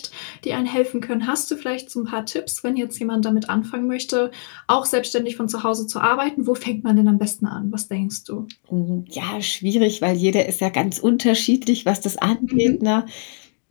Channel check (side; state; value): right; silent; digital silence